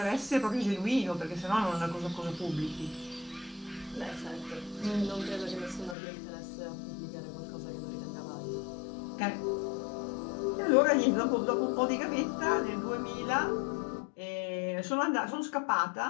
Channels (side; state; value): right; drops out; at 6.0 s